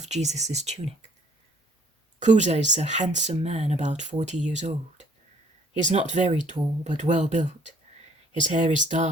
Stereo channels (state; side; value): normal; both; correlation 0.60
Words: Jesus' tunic. Chuza is a handsome man about 40 years old. He is not very tall, but well built. His hair is